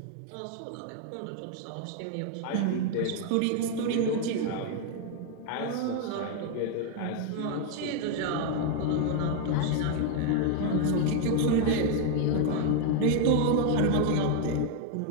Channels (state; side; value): different; both; correlation 0.00